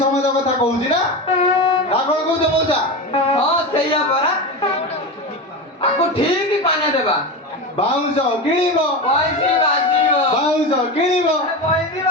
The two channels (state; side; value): normal; both; correlation 0.21